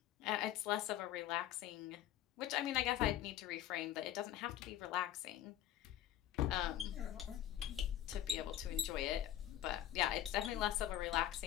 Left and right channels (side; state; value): right; quieter; 12.1 dB